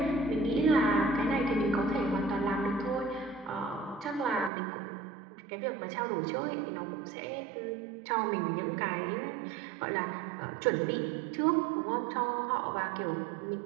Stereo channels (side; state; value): left; drops out; at 4.5 s